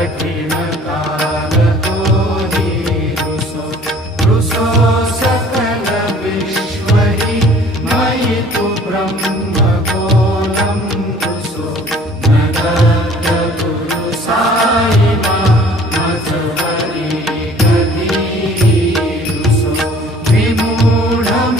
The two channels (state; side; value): normal; both; correlation 0.52